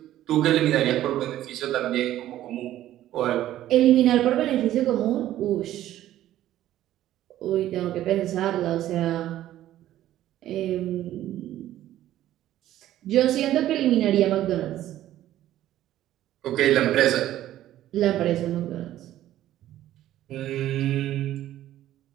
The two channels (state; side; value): quieter; left; 13.3 dB